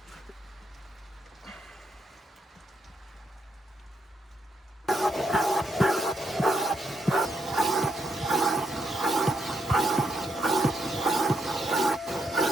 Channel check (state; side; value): normal; both; correlation 0.79